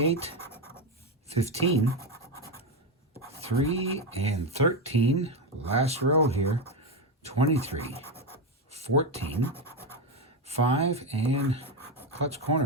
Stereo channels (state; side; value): normal; both; correlation 0.11